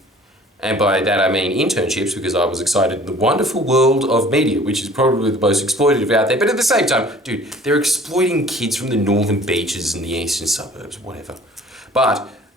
And by that I mean internships, because I was excited in the wonderful world of media, which is probably the most exploitative out there. But at the same time, dude, they're exploiting kids from the northern beaches and the eastern suburbs, whatever. But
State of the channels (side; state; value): both; normal; correlation 0.49